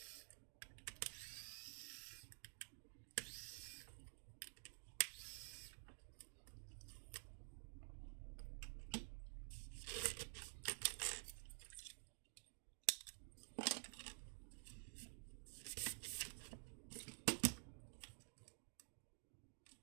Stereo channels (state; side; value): silent; left; digital silence